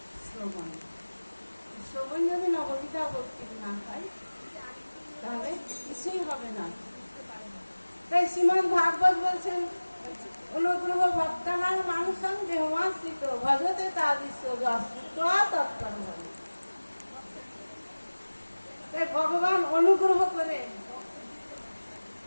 শ্রবণ। শ্রবণ যদি নববিধা ভক্তির না হয় তাহলে কিছুই হবে না। তাই শ্রীমদ্ ভাগবত বলছেন, অনুগ্রহ ভক্তানাং মানুষং দেহমাশ্রিত ভজতে তাদৃশ্য তৎপর হবে। তাই ভগবান অনুগ্রহ করে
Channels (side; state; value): both; inverted; correlation -1.00